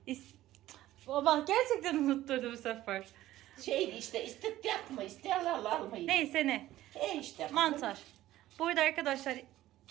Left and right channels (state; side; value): quieter; left; 14.9 dB